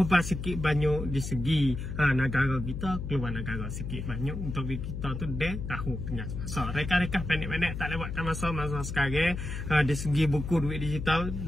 sikit banyak di segi negara kita, keluar negara sikit banyak untuk kita tu dia tahu tengah masa. Reka-reka pendek-pendek tak lewatkan masa sekarang. Di segi buku duit digital,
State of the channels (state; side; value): noise; left; hum, 6 dB below the sound